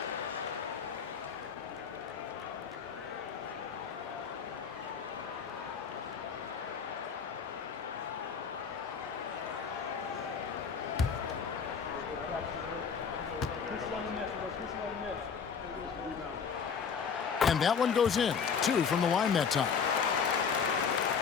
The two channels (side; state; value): right; quieter; 6.4 dB